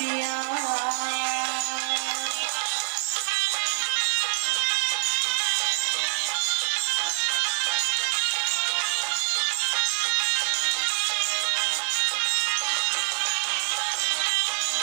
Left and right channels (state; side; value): silent; left; digital silence